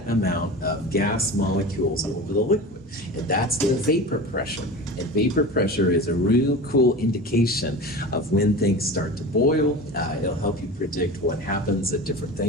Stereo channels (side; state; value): both; normal; correlation 0.32